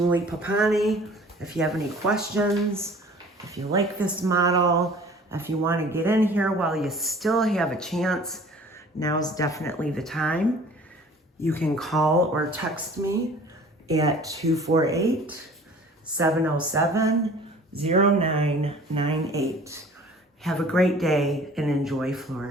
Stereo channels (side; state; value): both; normal; correlation 0.48